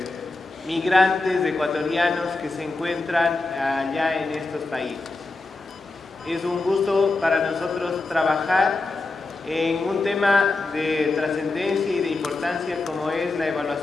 migrantes ecuatorianos que se encuentran allá en estos países. Es un gusto para nosotros trabajar en un tema de trascendencia y de importancia como es la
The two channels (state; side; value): quieter; right; 3.3 dB